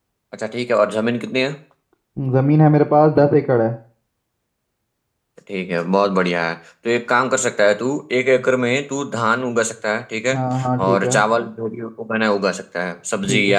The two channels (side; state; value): both; identical; correlation 1.00